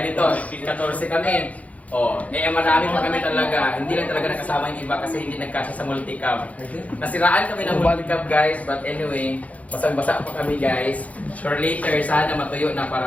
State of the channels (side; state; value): right; late; 0.069 ms